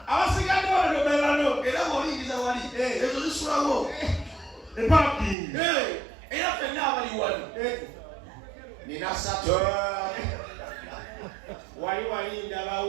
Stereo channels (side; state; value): left; drops out; at 5.4 s